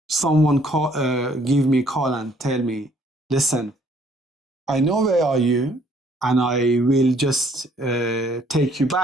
someone give me a call and tell me, listen, I know where are you, and I will just take you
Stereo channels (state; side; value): normal; both; correlation 0.62